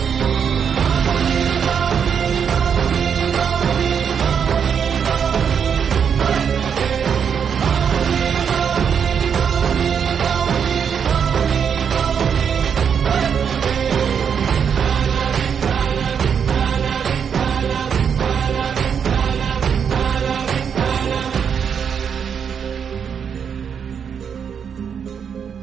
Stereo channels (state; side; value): quieter; left; 7.3 dB